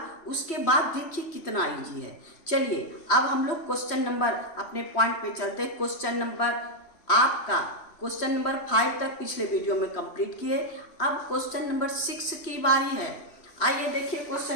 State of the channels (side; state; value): right; late; 3.1 ms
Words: उसके बाद देखिए कितना इजी है। चलिए अब हम लोग क्वेश्चन नंबर अपने पॉइंट पे चलते हैं। क्वेश्चन नंबर 5 तक पिछले वीडियो में कंप्लीट किए। अब क्वेश्चन नंबर 6 की बारी है। आइए देखिए